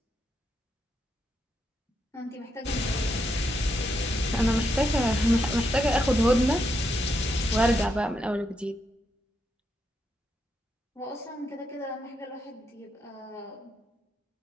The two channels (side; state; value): both; normal; correlation 0.81